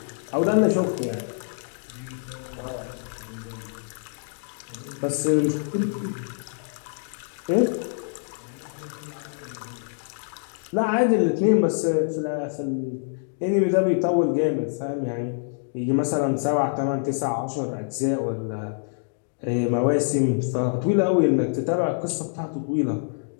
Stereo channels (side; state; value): right; silent; digital silence